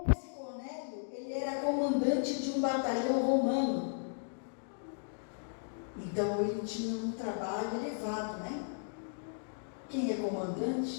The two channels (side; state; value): right; silent; digital silence